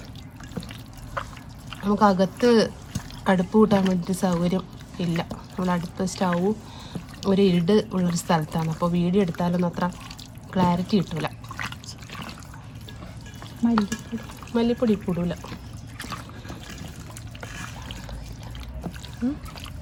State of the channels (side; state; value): both; identical; correlation 1.00